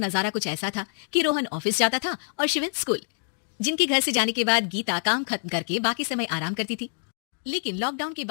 कुछ ऐसा था कि रोहन ऑफिस जाता था और शिवन स्कूल, जिनके घर से जाने के बाद गीता काम खत्म करके बाकी समय आराम करती थी। लेकिन लॉकडाउन के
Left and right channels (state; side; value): silent; right; 61 dB below the other